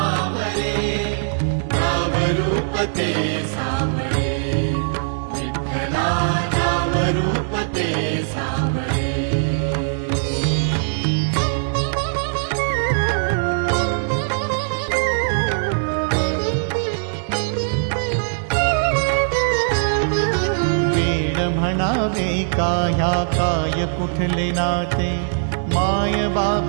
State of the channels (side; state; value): left; silent; digital silence